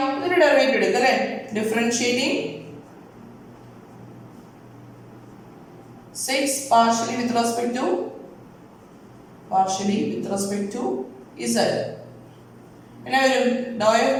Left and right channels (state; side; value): identical; both; correlation 1.00